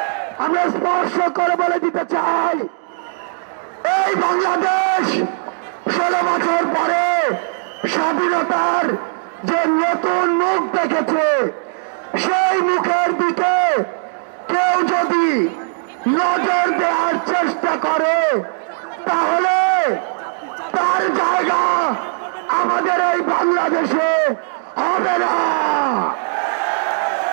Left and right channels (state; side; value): silent; left; digital silence